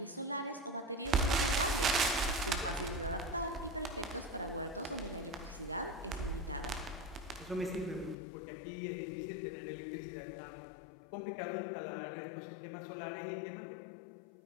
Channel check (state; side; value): drops out; right; at 8.2 s